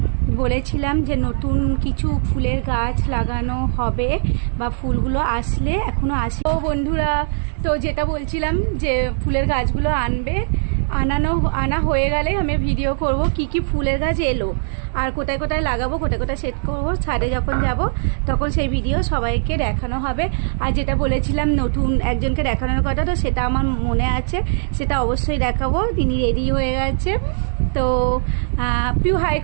বলেছিলাম যে নতুন কিছু ফুলের গাছ লাগানো হবে বা ফুলগুলো আসলে, এখনো আসে। তো বন্ধুরা, তো যেটা বলছিলাম যে ফুলের গাছগুলো আনা হয়ে গেলে আমি ভিডিও করব কি কি ফুলের গাছ এলো আর কোথায় কোথায় লাগাবো, কোথায় কোথায় সেট করবো। ছাদে যখন যাব তখন সেই ভিডিও সবাইকে দেখানো হবে। আর যেটা বলেছিলাম নতুন একজনকে দেখানোর কথা, তো সেটা আমার মনে আছে, সেটা অবশ্যই দেখাবো। তিনি রেডি হয়ে গেছে। তো পিউ হাই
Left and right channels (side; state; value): left; silent; digital silence